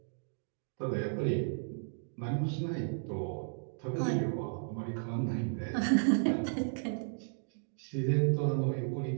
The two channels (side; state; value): left; silent; digital silence